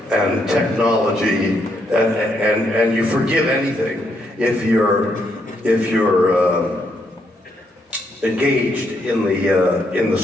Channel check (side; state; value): both; normal; correlation 0.76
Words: and technology, and you forgive anything if you're engaged in the